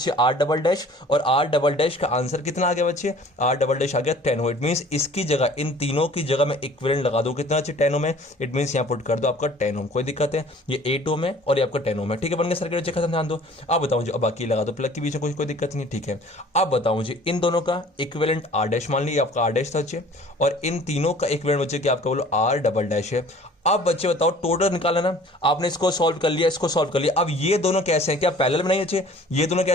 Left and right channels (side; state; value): both; normal; correlation 0.49